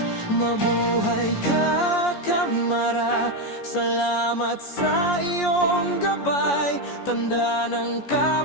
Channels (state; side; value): late; right; 14 ms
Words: Mabuhay ka Kamara, salamat sa iyong gabay, tanda ng